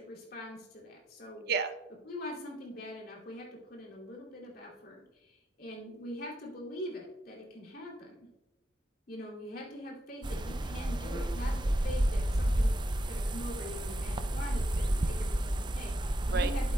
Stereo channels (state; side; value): normal; both; correlation 0.82